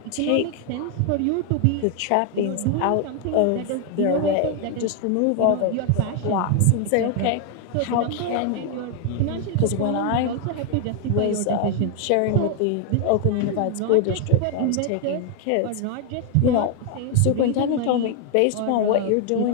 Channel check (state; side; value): different; both; correlation 0.00